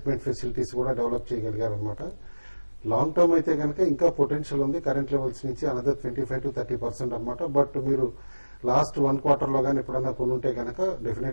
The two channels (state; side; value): inverted; both; correlation -1.00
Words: ఫెసిలిటీస్ కూడా డెవలప్ చేయగలిగారు అనమాట. లాంగ్ టర్మ్ అయితే కనుక ఇంకా పొటెన్షియల్ ఉంది, కరెంట్ లెవెల్స్ నుంచి అనదర్ 25 to 30% అనమాట. బట్ మీరు లాస్ట్ 1 quarter లో కానీ ఎప్పుడన్నా కొనుంటే కనుక